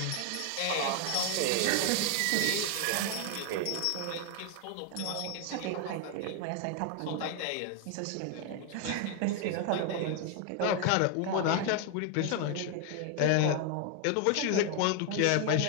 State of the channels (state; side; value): different; both; correlation 0.00